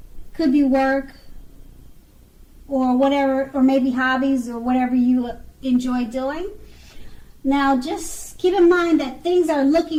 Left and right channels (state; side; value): identical; both; correlation 1.00